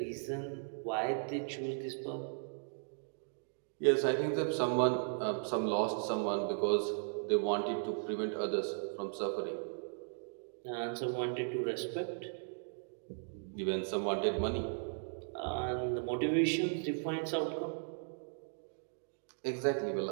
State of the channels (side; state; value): left; silent; digital silence